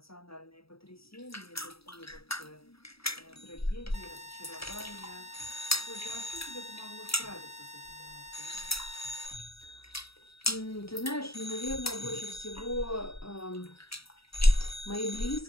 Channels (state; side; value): late; right; 0.76 ms